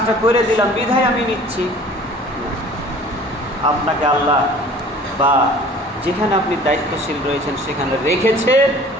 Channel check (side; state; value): both; normal; correlation 0.47